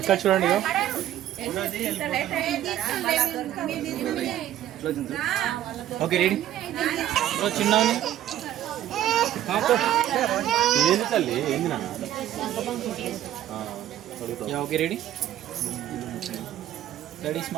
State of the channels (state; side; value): quieter; left; 12.5 dB